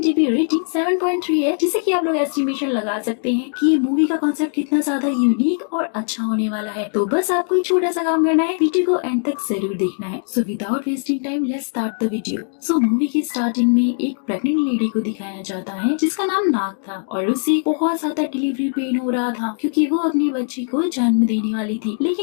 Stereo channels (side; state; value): right; silent; 63 dB below the other